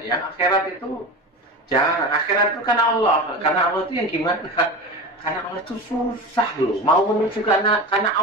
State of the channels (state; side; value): normal; both; correlation 0.28